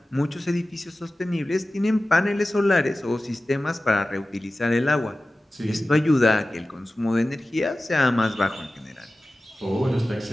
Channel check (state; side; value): normal; both; correlation 0.96